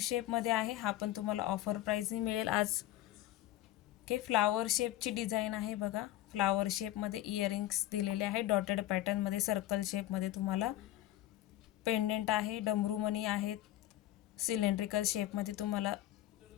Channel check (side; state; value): right; quieter; 14.1 dB